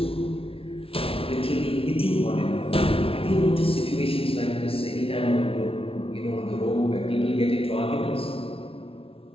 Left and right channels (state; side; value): late; right; 0.26 ms